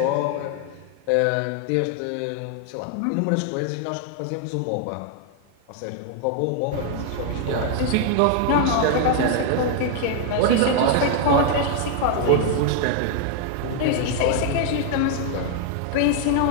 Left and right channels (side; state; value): both; different; correlation 0.00